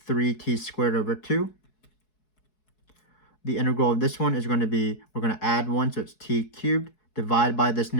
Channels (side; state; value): right; late; 4.7 ms